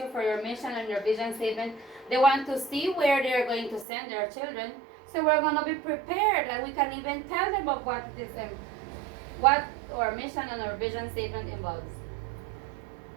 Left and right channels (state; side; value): drops out; left; at 3.9 s